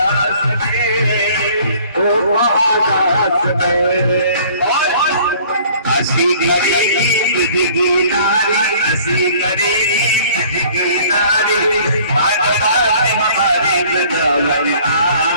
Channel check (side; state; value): both; inverted; correlation -0.53